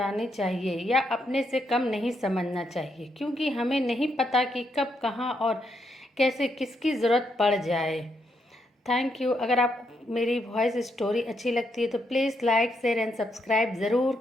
चाहिए या अपने से कम नहीं समझना चाहिए, क्योंकि हमें नहीं पता कि कब, कहाँ और कैसे किसकी ज़रूरत पड़ जाए। Thank you. अगर आपको मेरी वॉइस स्टोरी अच्छी लगती है तो please like, share and subscribe ज़रूर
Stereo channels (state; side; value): normal; both; correlation 0.78